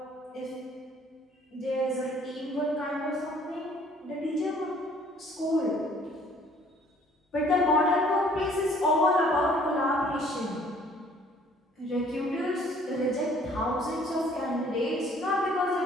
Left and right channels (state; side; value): normal; both; correlation 0.57